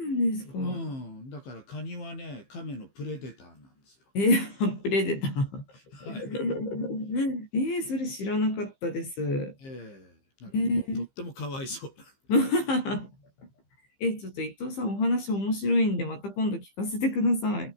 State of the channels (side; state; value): right; late; 15 ms